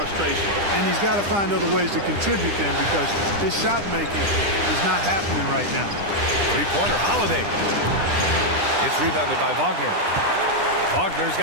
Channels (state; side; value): late; left; 9.9 ms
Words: And he's got to find other ways to contribute then, because his shot making is not happening right now. Three-pointer, Holiday. It's rebounded by Wagner. Wagner's